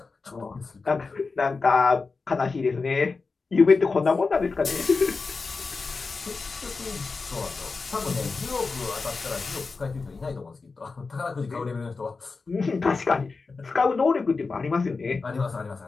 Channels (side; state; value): right; quieter; 4.3 dB